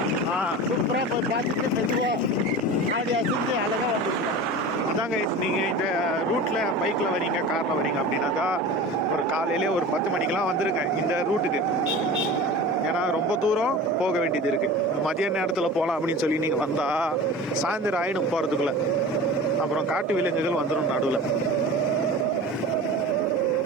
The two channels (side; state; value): both; normal; correlation 0.34